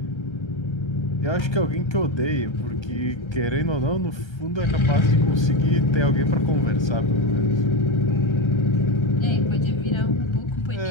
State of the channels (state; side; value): late; right; 1.3 ms